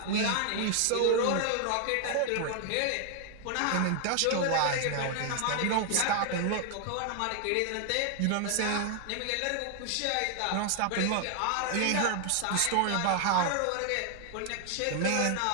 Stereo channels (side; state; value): both; different; correlation 0.00